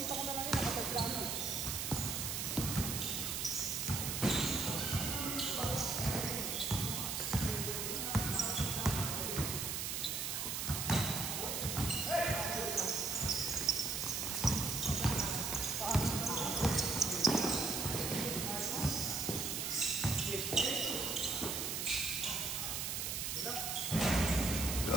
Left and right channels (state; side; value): noise; right; hiss, 2 dB below the sound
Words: ko na lang yun, nakatay plano.